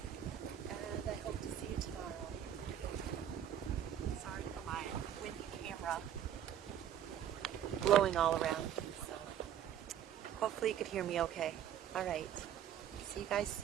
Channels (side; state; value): left; quieter; 10.1 dB